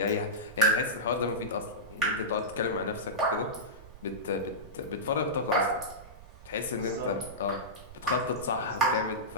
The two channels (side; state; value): right; noise; rumble, 18 dB below the sound